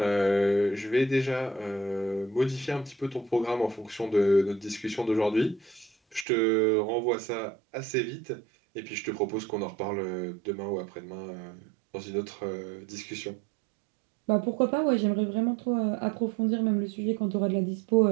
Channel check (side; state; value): left; drops out; at 6.2 s